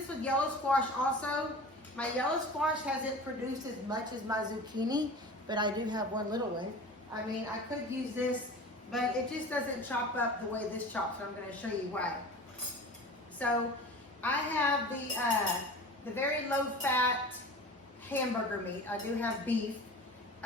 with yellow squash also. My yellow squash hasn't produced as much as my zucchini, but I do have one little one. I mean, I could use this, but it just doesn't chop up the way this chops, and I'm going to show you why. So I have the very low fat hamburger meat. I do have beef.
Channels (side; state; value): both; normal; correlation 0.37